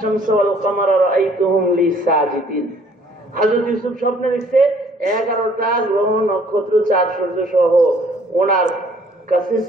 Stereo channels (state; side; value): normal; both; correlation 0.59